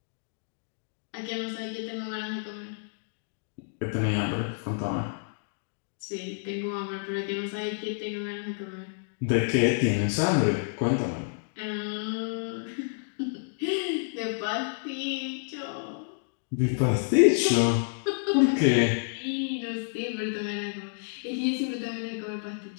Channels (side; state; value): right; silent; digital silence